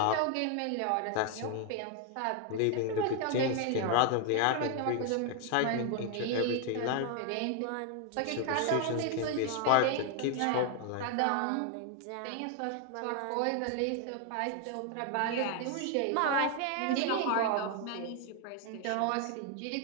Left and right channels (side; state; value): both; different; correlation 0.01